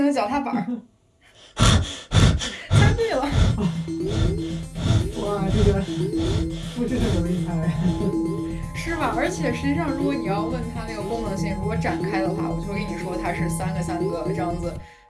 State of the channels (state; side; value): identical; both; correlation 1.00